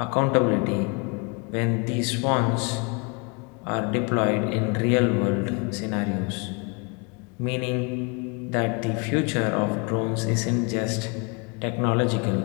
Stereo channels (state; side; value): quieter; right; 32.2 dB